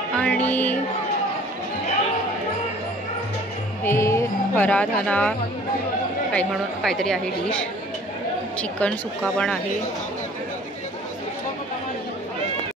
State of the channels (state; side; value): normal; both; correlation 0.51